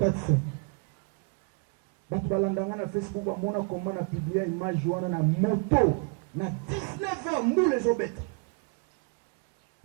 Na Facebook, comment on a publié une image na moto, na 19h, nous les obètes.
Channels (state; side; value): quieter; left; 32.5 dB